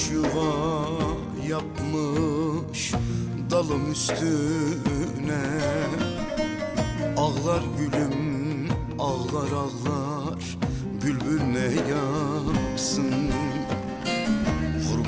yuva yapmış dalım üstüne. Ağlar gülüm, ağlar ağlar, bülbül ne yapsın?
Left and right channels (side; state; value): both; identical; correlation 1.00